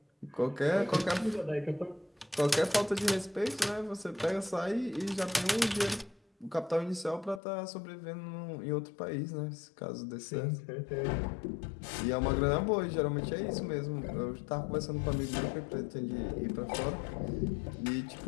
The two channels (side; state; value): right; drops out; at 7.4 s